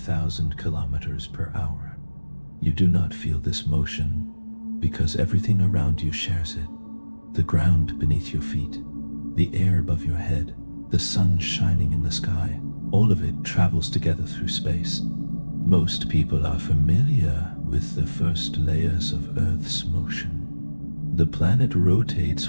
kilometers per hour. You do not feel this motion because everything around you shares it. The ground beneath your feet, the air above your head, the sun shining in the sky, all of it travels together through space. Most people are familiar with the first layers of Earth's motion. The planet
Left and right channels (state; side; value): inverted; both; correlation -1.00